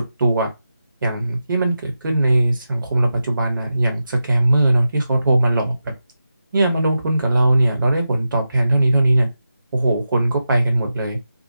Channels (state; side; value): inverted; both; correlation -0.90